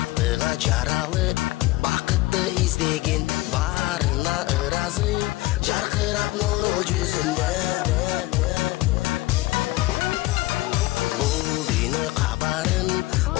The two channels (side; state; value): right; quieter; 18.9 dB